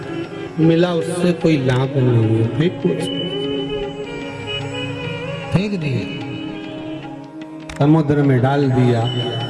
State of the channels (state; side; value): identical; both; correlation 1.00